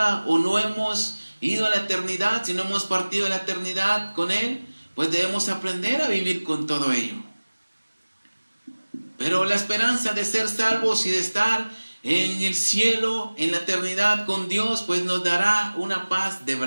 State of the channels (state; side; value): inverted; both; correlation -1.00